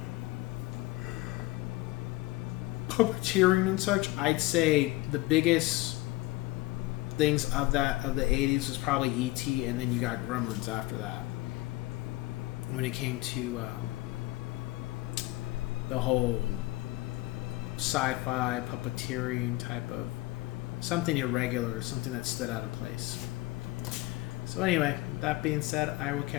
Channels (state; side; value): quieter; right; 19.1 dB